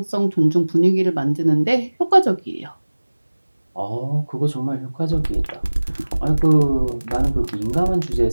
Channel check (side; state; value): both; inverted; correlation -1.00